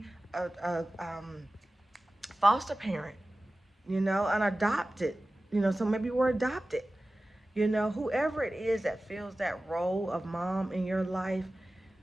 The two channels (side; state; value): both; normal; correlation 0.96